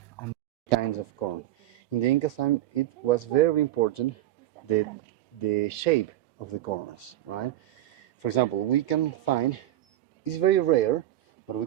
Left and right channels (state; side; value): quieter; left; 14.0 dB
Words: And kinds of corn. In the Inca time, it was very important the shape of the corns, right? For example, we can find, it's very rare, but we